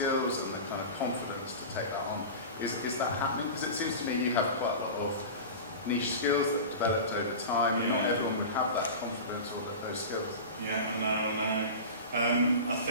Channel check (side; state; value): both; inverted; correlation -0.30